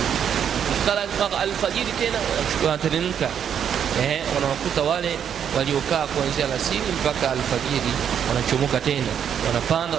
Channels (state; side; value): quieter; left; 8.5 dB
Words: Kala alfajiri tena wanateremka, wanawakuta wale waliokaa kuanzia alasiri mpaka alfajiri, wanachomoka tena, wanapanda